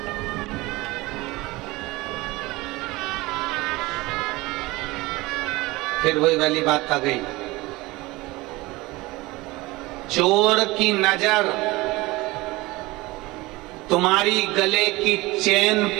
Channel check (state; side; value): quieter; left; 21.2 dB